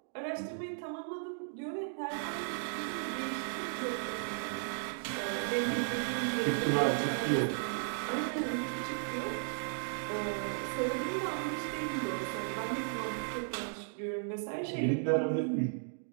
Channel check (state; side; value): silent; left; digital silence